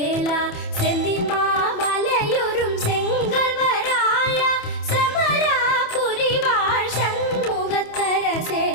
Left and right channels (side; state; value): right; late; 27 ms